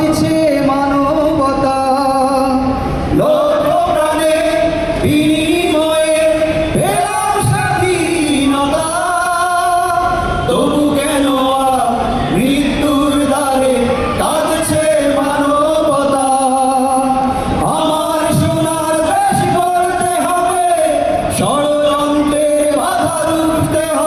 মানবতা। লক্ষ প্রাণের বিনিময়ে পেলাম স্বাধীনতা, তবু কেন আজ মৃত্যুর দ্বারে কাঁদছে মানবতা। আমার সোনার দেশ গড়তে হবে, ষড়যন্ত্রের বাধা রুখতে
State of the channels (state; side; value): identical; both; correlation 1.00